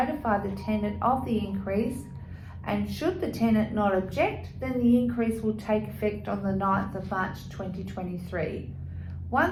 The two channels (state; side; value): identical; both; correlation 1.00